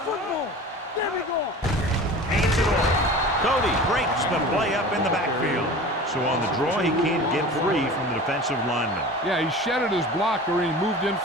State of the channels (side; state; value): both; normal; correlation 0.37